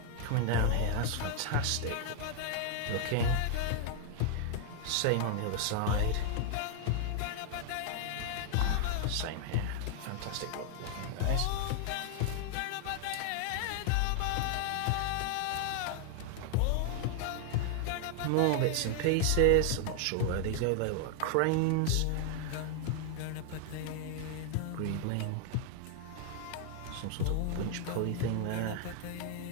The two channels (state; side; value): different; both; correlation 0.00